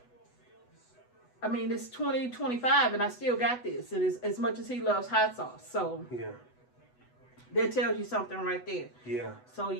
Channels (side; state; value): right; late; 8.1 ms